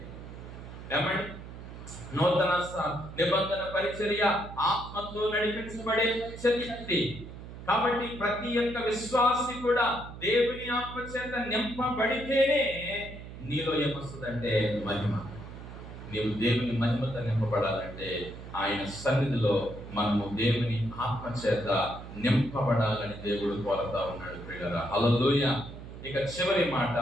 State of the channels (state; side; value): noise; right; hum, 13 dB below the sound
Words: ఏమండి, నూతన నిబంధన పరిచర్య ఆత్మతో నడిపించబడే చర్య. కాబట్టి ప్రతి ఒక్క విశ్వాసి కూడా దేవుని ఆత్మ చేత నింపబడితేనే నీలో ఏమొస్తుందంటే మహిమ. నీవు దేవుని మహిమతో నింపబడాలంటే ఆయన సన్నిధిలో మనము దేవుని ఆత్మ చేత నింపబడాలని దేవుడు కోరుతా ఉన్నాడు. ప్రియులారా, హల్లెలూయా. ఇక చివరి మాట,